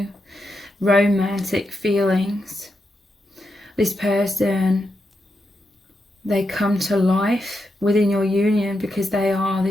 romantic feelings. This person, they come to life within your union because they are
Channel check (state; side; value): normal; both; correlation 0.85